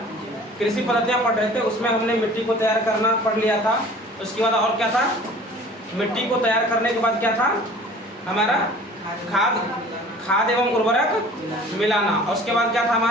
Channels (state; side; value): normal; both; correlation 0.47